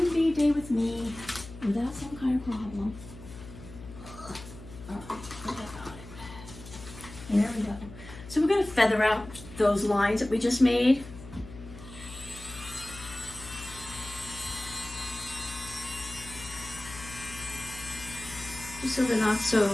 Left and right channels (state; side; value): noise; left; hum, 15 dB below the sound